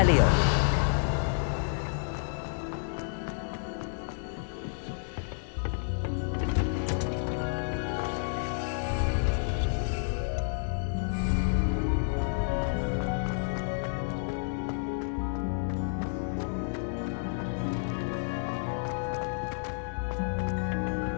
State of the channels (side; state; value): right; silent; digital silence